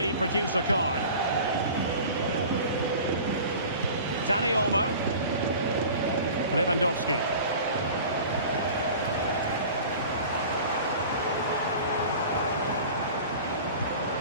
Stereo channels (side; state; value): both; inverted; correlation -0.40